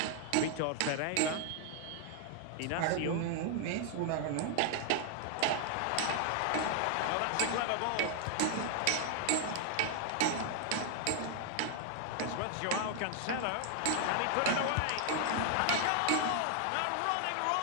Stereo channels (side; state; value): both; different; correlation 0.00